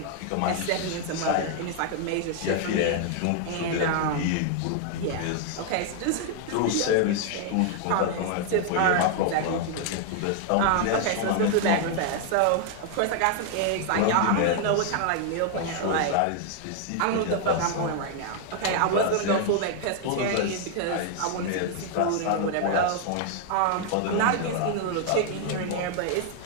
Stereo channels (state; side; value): different; both; correlation 0.00